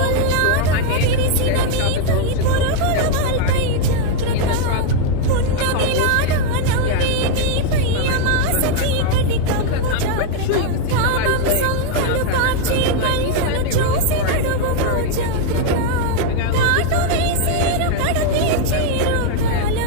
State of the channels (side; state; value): both; different; correlation 0.00